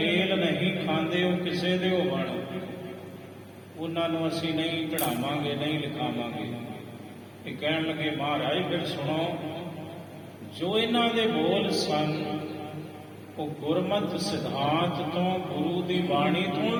ਨਹੀਂ ਖਾਂਦੇ ਉਹ ਕਿਸੇ ਦੇ ਹੋਵਣ, ਉਹਨਾਂ ਨੂੰ ਅਸੀਂ ਨਹੀਂ ਚੜਾਵਾਂਗੇ, ਨਹੀਂ ਲਿਖਾਵਾਂਗੇ। ਇਹ ਕਹਿਣ ਲੱਗੇ ਮਹਾਰਾਜ ਫਿਰ ਸੁਣੋ, ਜੋ ਇਹਨਾਂ ਦੇ ਬੋਲ ਸਨ ਉਹ ਗੁਰਮਤਿ ਸਿਧਾਂਤ ਤੋਂ, ਗੁਰੂ ਦੀ ਬਾਣੀ ਤੋਂ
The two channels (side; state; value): both; identical; correlation 1.00